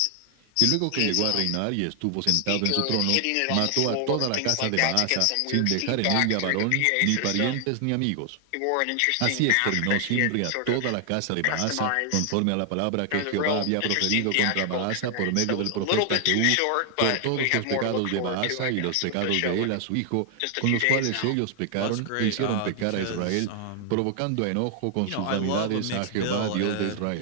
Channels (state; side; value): different; both; correlation 0.00